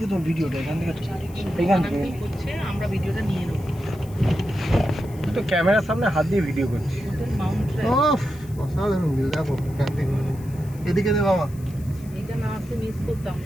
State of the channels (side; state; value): left; noise; hiss, 23 dB below the sound